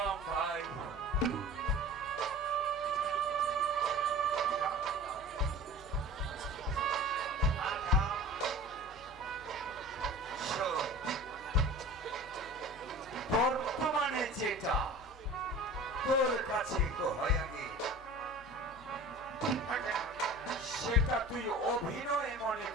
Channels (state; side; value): normal; both; correlation 0.39